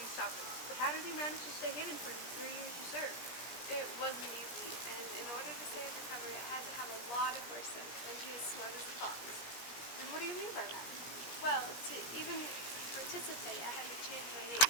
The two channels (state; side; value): late; right; 17 ms